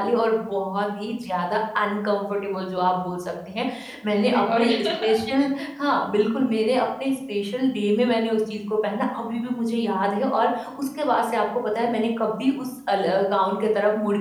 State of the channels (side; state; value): both; identical; correlation 1.00